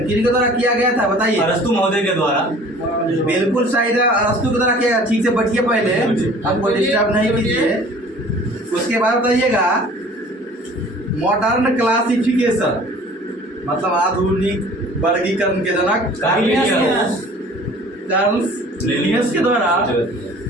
किनके द्वारा किया गया था बताइए? अरस्तु महोदय के द्वारा। बिल्कुल सही है, अरस्तु के द्वारा किया गया। ठीक से बैठिए, पहले हमको डिस्टर्ब नहीं कीजिए। उसके बाद बताइएगा मॉडर्न क्लासिफिकेशन, मतलब आधुनिक वर्गीकरण के जनक कार्ल लिनियस के द्वारा।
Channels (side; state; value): both; normal; correlation 0.48